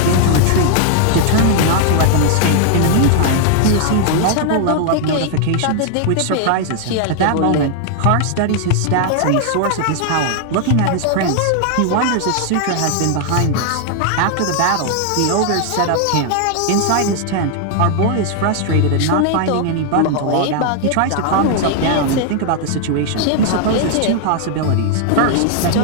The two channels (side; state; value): both; different; correlation 0.00